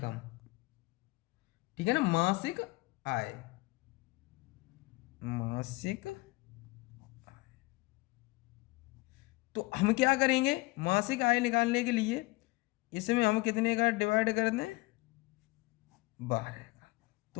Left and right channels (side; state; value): right; quieter; 23.3 dB